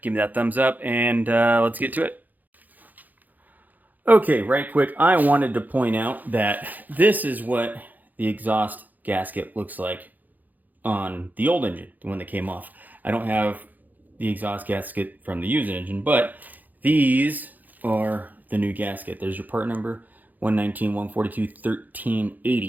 give me that thumbs up, and let's get to it. Okay, right quick, I wanted to point out that this is what the exhaust gasket looks like on the old engine, the one that came off. I don't have the exhaust gasket from the used engine, but these are the new gasket. There's your part number, 119, 142,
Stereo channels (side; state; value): left; late; 0.083 ms